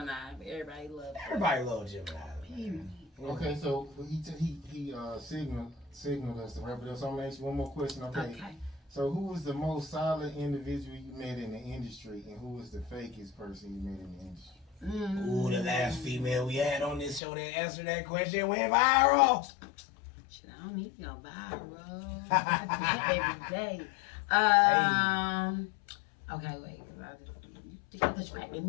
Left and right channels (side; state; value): right; drops out; at 17.2 s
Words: Everybody loves. Everybody loves Gemini. Period. Okay, so he signaled us to wrap it up. So I'm gonna ask you one more question. Okay. So who was the most solid individual you met in the industry, and who was the fakest person you met in the industry? Ooh, the last female we had on this show that answered that question went viral. Shit, I don't need to go viral. I do that every day. Okay, wait. You distracted